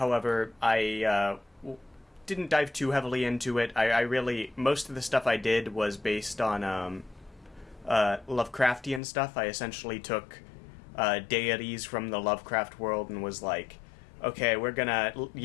I didn't dive too heavily into it. I really, most of the stuff I did was based on Lovecraftian stuff. I essentially took deities from the Lovecraft world and was like, okay, we're gonna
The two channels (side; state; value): right; drops out; at 9.0 s